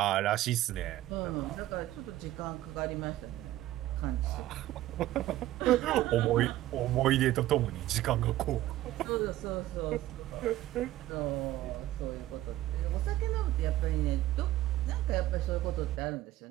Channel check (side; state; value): left; quieter; 15.1 dB